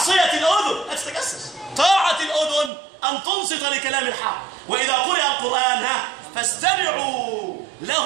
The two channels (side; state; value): left; drops out; at 2.7 s